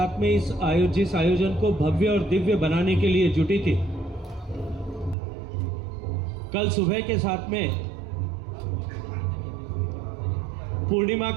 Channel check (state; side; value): drops out; left; at 5.2 s